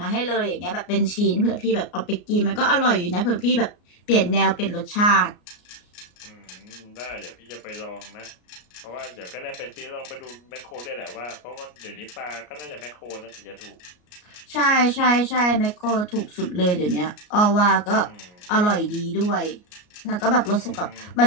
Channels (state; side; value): late; right; 33 ms